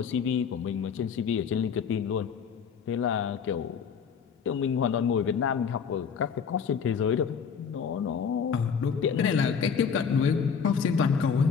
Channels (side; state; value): right; quieter; 6.6 dB